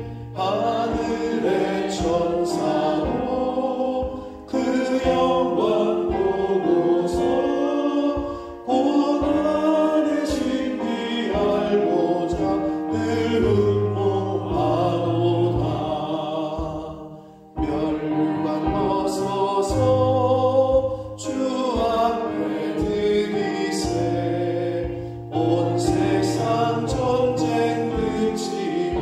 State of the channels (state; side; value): identical; both; correlation 1.00